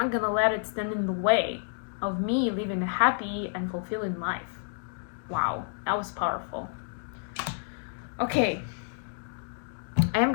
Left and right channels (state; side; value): silent; right; digital silence